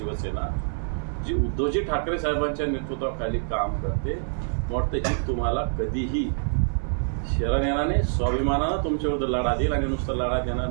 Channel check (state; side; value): silent; left; 61 dB below the other